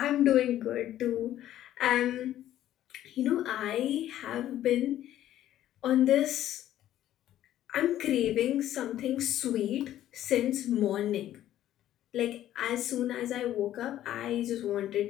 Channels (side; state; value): right; quieter; 12.6 dB